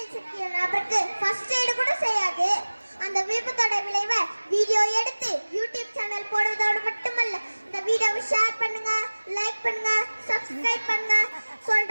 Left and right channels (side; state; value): both; inverted; correlation -1.00